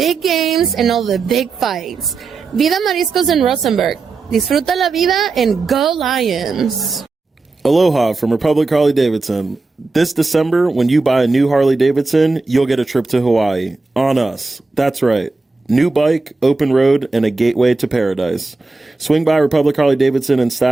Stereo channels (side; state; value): left; quieter; 3.8 dB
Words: games and all the big fights. Vida Mariscos in Rosenberg. Disfruta la vida and go Lions. Aloha from Republic Harley Davidson. This December, when you buy a new Harley Davidson, you'll get a trip to Hawaii. On us. That's right. New bike, open road, and a gateway to paradise. Swing by Republic Harley Davidson in